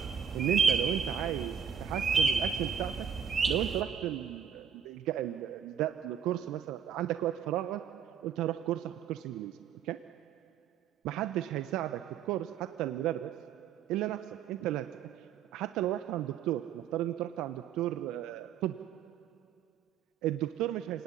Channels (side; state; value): left; quieter; 8.1 dB